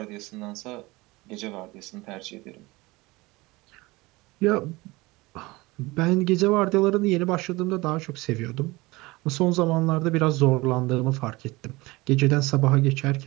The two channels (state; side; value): quieter; left; 22.0 dB